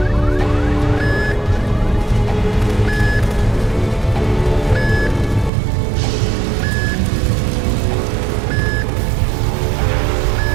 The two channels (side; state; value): left; drops out; at 5.5 s